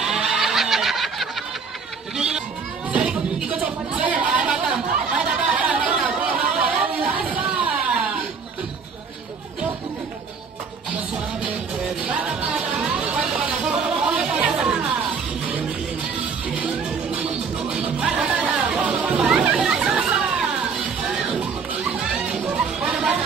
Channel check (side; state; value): left; quieter; 5.4 dB